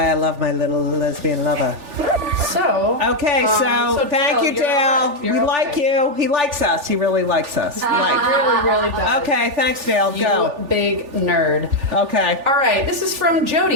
I love my little lesbian lover. So. Okay, so thank Dale, you, you're Dale. all right. We You're like okay. you. He likes us. He really likes us. Really, really does. Okay, thanks, Dale. You Go. big nerd. Okay. All right, this is from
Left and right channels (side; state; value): left; late; 3.4 ms